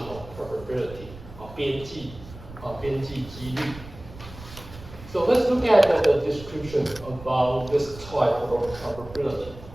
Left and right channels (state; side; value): noise; right; rumble, 16 dB below the sound